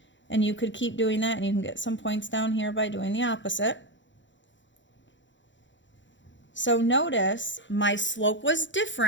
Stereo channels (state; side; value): late; right; 0.54 ms